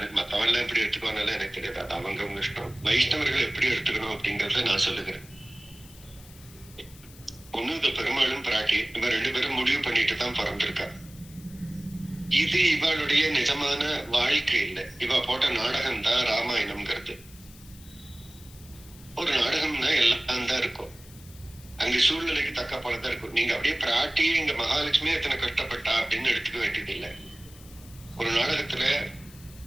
மத்தவெல்லாம் எப்படி எடுத்துக்கோனாலும் எனக்கு தெரியாது. அது அவங்க இஷ்டம். வைஷ்ணவர்கள் எப்படி எடுத்துக்கணும் அப்படிங்கறத நான் சொல்லுகிறேன். ஒண்ணு இது பெரும்பாலும் பிராட்டி, இவ 2 பேரும் முடிவு பண்ணிட்டு தான் பிறந்திருக்கா. இது இவளுடைய நிஜமான வாழ்க்கை இல்லை. இவ போட்ட நாடகம் தான் ராமாயணம்ங்கிறது. ஒரு நாடகம்னா எல்லாம் தான் இருக்கும். அங்க சூழ்நிலைக்கு தக்க போலதான் இருக்கும். நீங்க அப்படியே பிராட்டியே இங்க மகாலட்சுமி எத்தனை கஷ்டப்பட்டா அப்படின்னு எடுத்துக்க வேண்டியது இல்லை. ஒரு நாடகத்துல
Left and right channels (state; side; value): noise; left; hiss, 22 dB below the sound